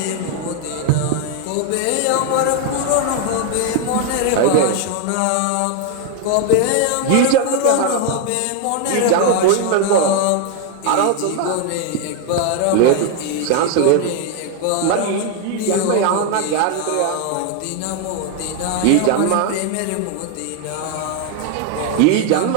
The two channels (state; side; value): different; both; correlation 0.00